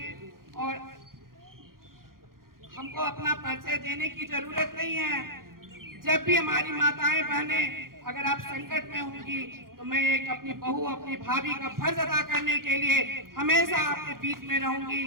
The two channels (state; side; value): late; left; 0.92 ms